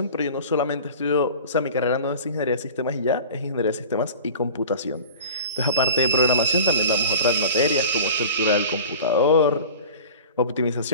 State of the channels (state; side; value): inverted; both; correlation -0.39